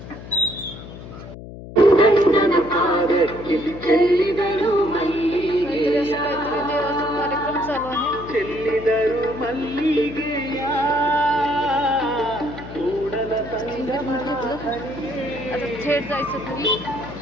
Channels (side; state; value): left; noise; hum, 13 dB below the sound